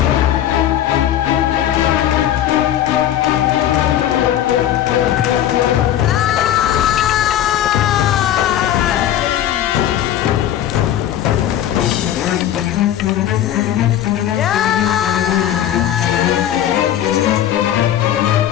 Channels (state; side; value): quieter; right; 11.5 dB